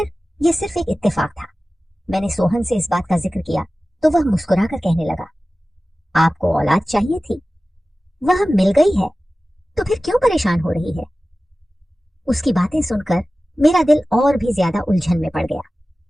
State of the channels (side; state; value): both; normal; correlation 0.96